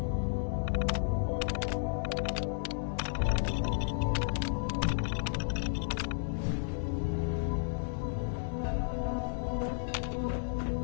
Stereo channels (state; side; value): silent; right; digital silence